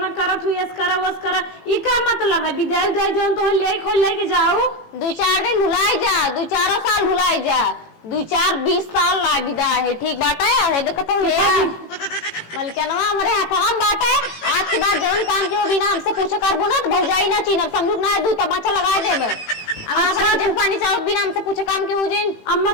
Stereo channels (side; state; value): right; late; 18 ms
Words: करत हूं, यस करा वस करा ई का मतलब है। विदाई दे जोन तो ले खोल लेके जाओ 2-4 दिन भुलाई जा, 2-4 साल भुलाई जा, 2-4-20 साल ला विदा है ठीक बात है। देखो तो ये मलकनवा हमारे हाथ बात है आज के बाद जवन काम के बिना हमसे पूछो करबो ना तो भौजाई ना चीनब समझू ना दू तमाचा लगा देबे। अच्छा जन पानी चाहो बिना हमसे पूछे काम के हो जिन अम्मा